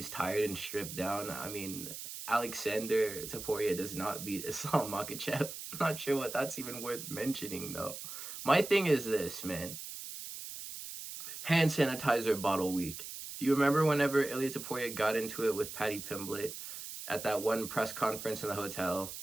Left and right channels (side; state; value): right; noise; hiss, 9 dB below the sound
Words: tired and stripped down, I mean, Alexander Topuria does not beat Islam Makhachev. I'm not sure what that's even worth mentioning, though. My thing is this, man. Hand sanitizer bottle week. Do you remember whenever ILIA Topuria got into it with Paddy Pimblett at that one press conference in the hotel,